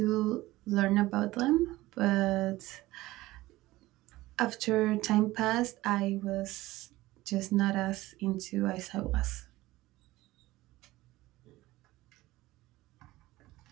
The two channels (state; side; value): quieter; left; 18.0 dB